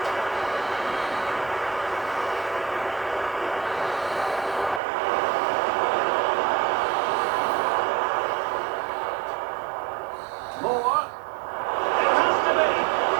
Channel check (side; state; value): left; drops out; at 4.8 s